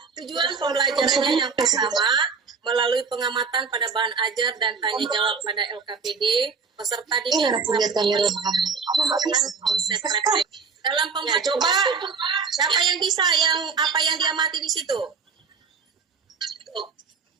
tujuan pembelajarannya yang pertama, melalui pengamatan pada bahan ajar dan tanya jawab pada LKPD, peserta didik konsep refleksi. Dalam pembelajaran, coba siapa yang bisa yang apa yang diamati di situ?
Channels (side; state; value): left; quieter; 5.4 dB